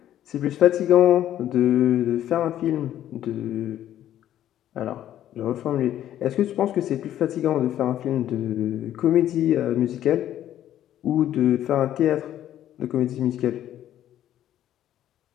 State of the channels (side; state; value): right; quieter; 11.8 dB